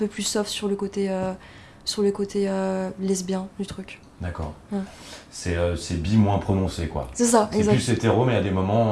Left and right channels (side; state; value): both; identical; correlation 1.00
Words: plus soft sur le côté lesbien du truc. D'accord. Ouais. C'est bi moins prononcé, quoi. C'est ça, C'est exact. plus hétéro, mais à des